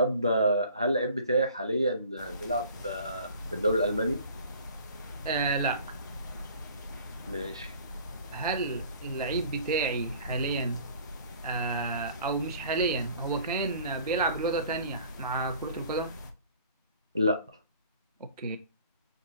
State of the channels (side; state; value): both; inverted; correlation -0.49